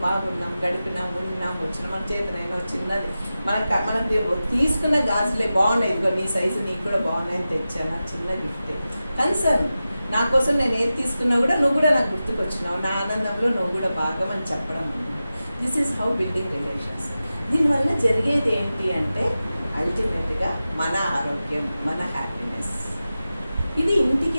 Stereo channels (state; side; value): inverted; both; correlation -0.94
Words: బాగున్నాం, గడిపినాం, ఉన్నాం, వచ్చినాం. మన చేతనైనా చిన్నది మనకు తీసుకున్న గాజులే బాగున్నాయి, ఇదిగో నీ సైజు నీకు కూడా బాగున్నాయని తెచ్చాను, చిన్న గిఫ్ట్. కన్సర్న్ నా కోసం నేను ఏది తీసుకున్నా కూడా నువ్వు కూడా నాకు గుర్తుకొచ్చినావు, నా ఆనందంలో నువ్వు కూడా భాగం అని చెప్పడం. This is how building relations. దీనివల్ల జరిగేది ఏంటి అంటే అల్టిమేట్గా మన ఆరోగ్యం, మన హ్యాపీనెస్. ఇది